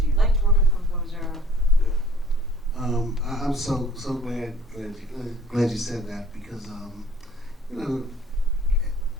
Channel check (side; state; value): both; normal; correlation 0.53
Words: you like to work with a composer? I'm so glad you said that, because you know,